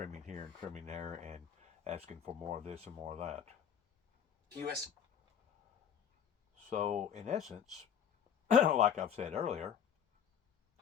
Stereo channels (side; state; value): right; quieter; 8.3 dB